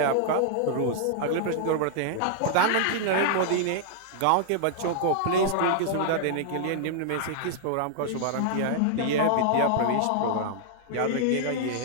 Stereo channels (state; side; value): different; both; correlation -0.01